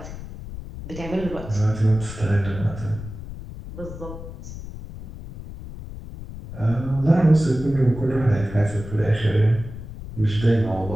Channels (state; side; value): noise; left; rumble, 12 dB below the sound